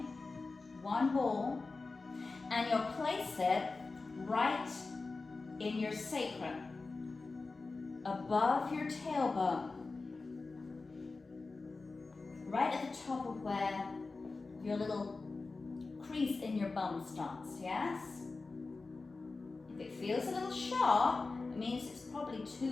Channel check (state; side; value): quieter; right; 3.8 dB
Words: One ball, and you'll place it right in your sacrum, above your tailbone, right at the top of where your little crease in your bum starts, yes? If it feels a little sharp, it means it's probably